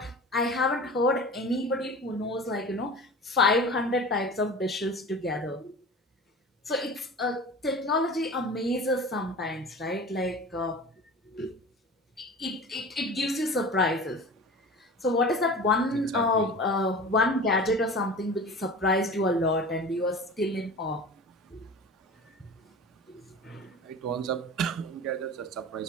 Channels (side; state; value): both; normal; correlation 0.36